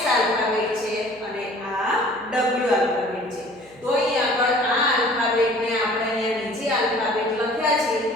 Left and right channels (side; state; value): right; noise; hum, 26 dB below the sound